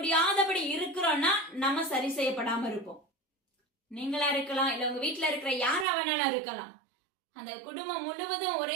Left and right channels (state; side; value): drops out; left; at 5.9 s